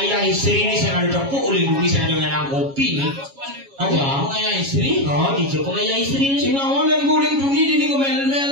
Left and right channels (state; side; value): late; left; 7.3 ms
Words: istri ini saya ada tepuk oleh bumi saya ada ngenang kopi. Ada pengayah istri? Tiga pengayah istri ini. Sing awal yang guling dunia ini